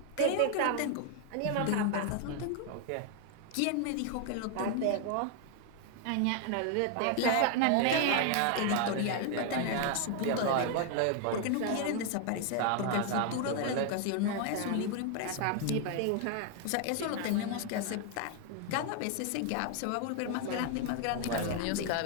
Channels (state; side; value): different; both; correlation 0.00